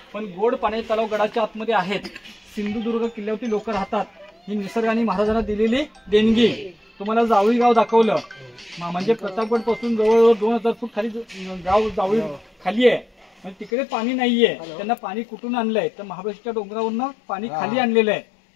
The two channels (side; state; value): right; drops out; at 13.7 s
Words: पण गोड पाण्याचे तलाव गडाच्या आतमध्ये आहेत. सिंधुदुर्ग किल्ल्यावरती लोक राहतात. ही निसर्गाने महाराजांना दिलेली देणगी. तुम्हाला जावळी गाव दाखवलं, म्हणजे प्रतापगड पासून जवळजवळ 2000 फूट खाली गाव जावळी खाली आहे. म्हणजे तिकडे पाणी नाहीये. त्यांना पाणी कुठून आणलंय? तर महाबळेश्वरच्या डोंगरावरनं पाणी खाली आणलेलं आहे.